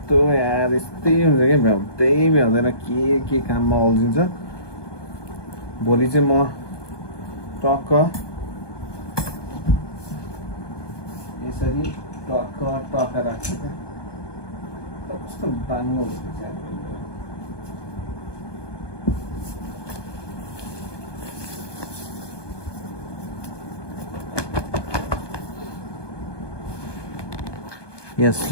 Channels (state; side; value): late; right; 1.2 ms